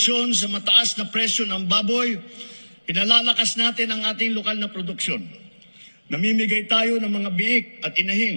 sa mataas na presyo ng baboy, pinalalakas natin ang ating lokal na produksyon. Namimigay tayo ng mga biik at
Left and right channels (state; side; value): inverted; both; correlation -1.00